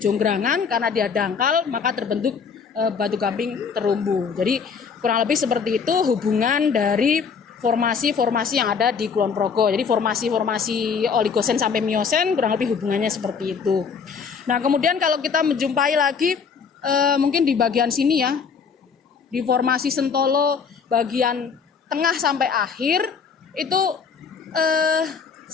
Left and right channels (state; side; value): quieter; right; 6.0 dB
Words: karena dia dangkal maka terbentuk batu gamping terumbu. Jadi kurang lebih seperti itu hubungan dari formasi-formasi yang ada di Kulon Progo. Jadi formasi-formasi Oligosen sampai Miosen kurang lebih hubungannya seperti itu. Nah, kemudian kalau kita menjumpai lagi mungkin di bagian sini ya, di formasi Sentolo bagian tengah sampai akhir itu